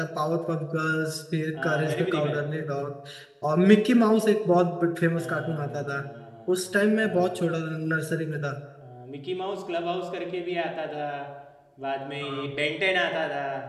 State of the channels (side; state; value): both; identical; correlation 1.00